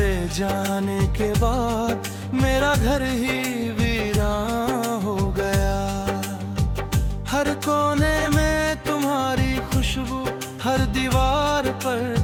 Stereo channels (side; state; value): both; identical; correlation 1.00